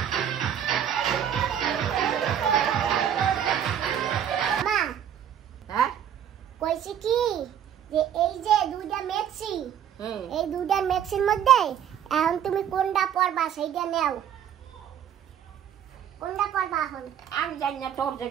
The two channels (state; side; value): quieter; left; 9.4 dB